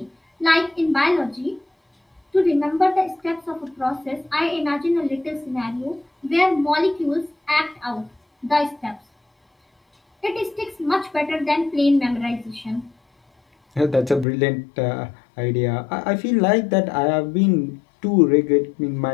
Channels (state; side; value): drops out; right; at 14.2 s